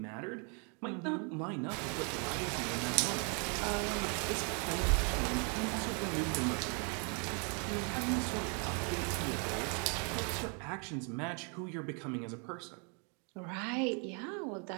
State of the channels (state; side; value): quieter; left; 37.4 dB